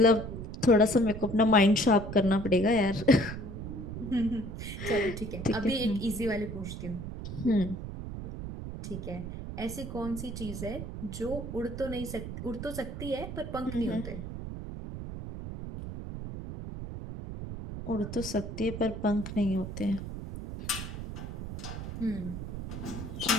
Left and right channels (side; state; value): right; noise; rumble, 8 dB below the sound